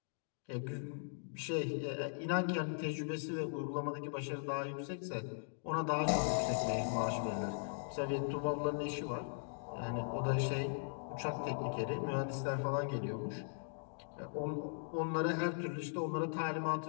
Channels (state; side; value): silent; right; digital silence